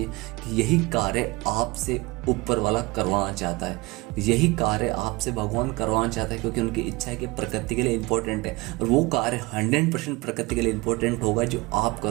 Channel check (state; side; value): quieter; left; 23.7 dB